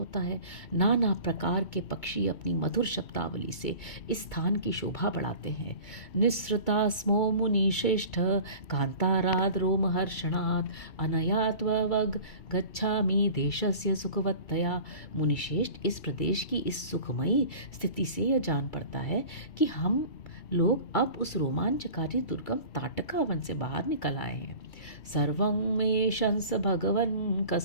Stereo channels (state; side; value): late; right; 2.2 ms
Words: है। नाना प्रकार के पक्षी अपनी मधुर शब्दावली से इस स्थान की शोभा बढ़ाते हैं। निःसृता स्मो मुनिश्रेष्ठ कांताराद रोमहर्षणात् अनया त्ववग गच्छामि देशस्य सुखवत्तया। मुनिश्रेष्ठ, इस प्रदेश की इस सुखमयी स्थिति से यह जान पड़ता है कि हम लोग अब उस रोमांचकारी दुर्गम ताटका वन से बाहर निकल आए हैं। सर्वं मे शंस भगवन्